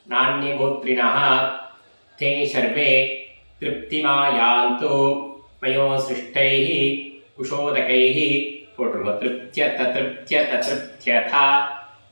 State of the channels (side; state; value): both; inverted; correlation -1.00